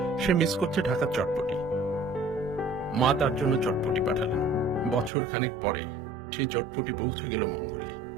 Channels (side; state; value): left; drops out; at 5.1 s